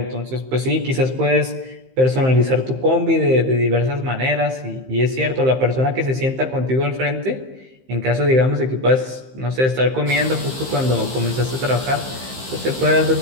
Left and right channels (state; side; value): late; left; 15 ms